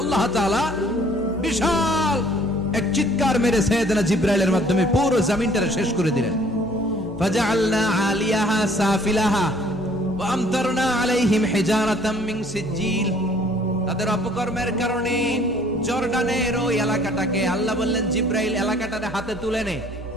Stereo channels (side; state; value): both; normal; correlation 0.57